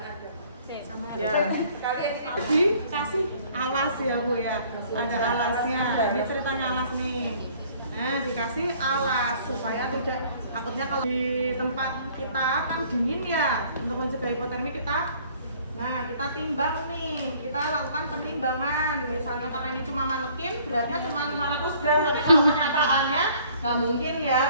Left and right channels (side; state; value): both; inverted; correlation -0.57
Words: Ya. Dikasih alas ya Bu ya. Ada alasnya. Ini ceritanya alas nih. Nah, dikasih alas supaya tidak, takutnya kalau di tempat kita kan dingin ya, untuk mencegah hipotermi kita timbang nih, kita lakukan penimbangan. Misalnya karena ini cuma manekin, beratnya cuma 500 gram, tapi kalau kenyataannya nggak mungkin ya,